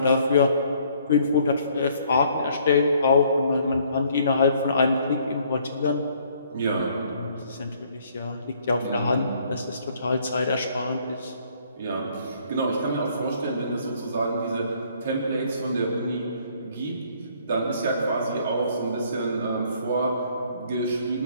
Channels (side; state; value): both; inverted; correlation -0.63